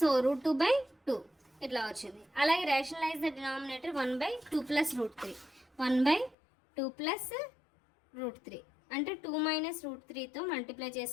రూట్ 2/2 ఇట్లా వచ్చింది. అలాగే rationalise the denominator 1/2 plus root 3, 1/2 plus root 3 అంటే 2 మైనస్ రూట్ 3తో మల్టిప్లై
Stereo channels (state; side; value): drops out; right; at 6.4 s